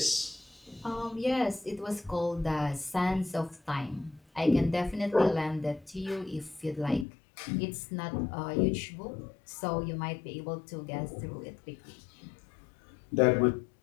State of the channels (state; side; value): drops out; right; at 7.1 s